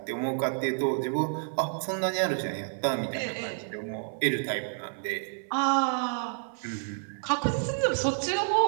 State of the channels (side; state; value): left; silent; 58 dB below the other